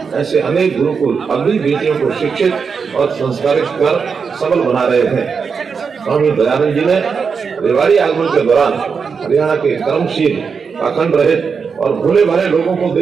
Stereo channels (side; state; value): left; quieter; 5.7 dB